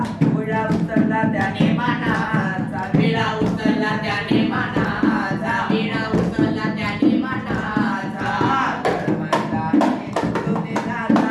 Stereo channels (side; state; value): both; identical; correlation 1.00